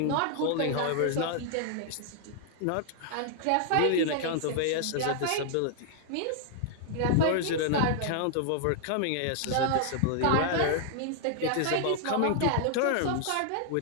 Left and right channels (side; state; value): both; different; correlation -0.01